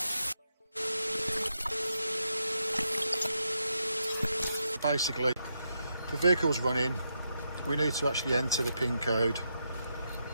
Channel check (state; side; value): inverted; both; correlation -0.82